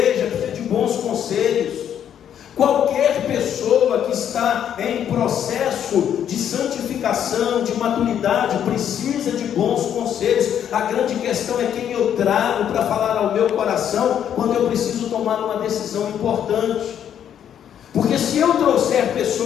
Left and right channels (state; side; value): quieter; right; 9.5 dB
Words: precisa de bons conselhos. Qualquer pessoa que está em processo de santificação, de maturidade, precisa de bons conselhos. A grande questão é quem eu trago para falar ao meu coração quando eu preciso tomar uma decisão importante. Porque se eu trouxer